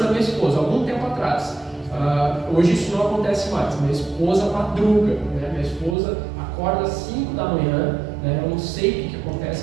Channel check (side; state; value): left; drops out; at 6.0 s